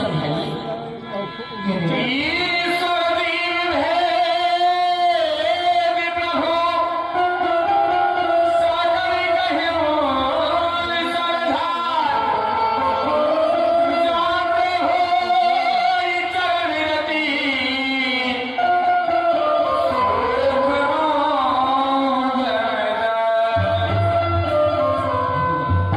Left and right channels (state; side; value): identical; both; correlation 1.00